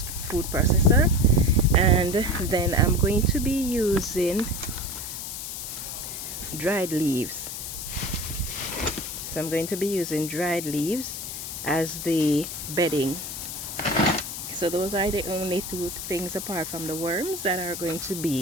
food processor, and then I'm going to be using dried leaves. So I'm going to be using dried leaves as the bedding. So those are the only two things apart from the worms that are going to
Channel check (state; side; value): noise; left; hiss, 7 dB below the sound